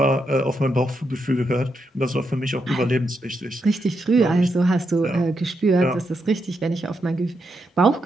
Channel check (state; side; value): normal; both; correlation 0.82